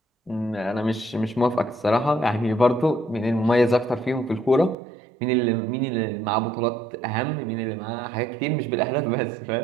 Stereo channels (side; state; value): left; drops out; at 4.8 s